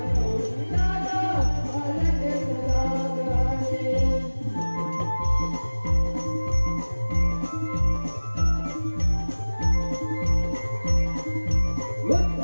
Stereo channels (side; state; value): both; inverted; correlation -1.00